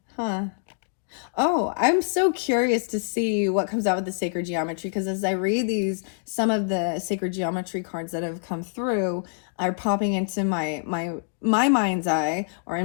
Oh, I'm so curious to see what comes out with the sacred geometry, because as I read some of the sacred geometry cards that have come through are popping into my mind's eye, or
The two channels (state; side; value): silent; right; digital silence